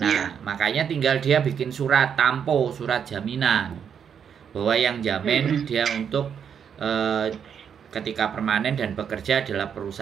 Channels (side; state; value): left; quieter; 7.7 dB